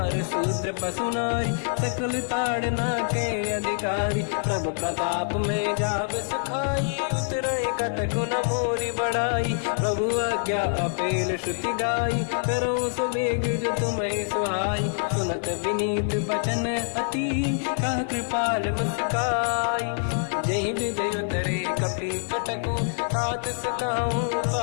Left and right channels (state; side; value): silent; right; 55 dB below the other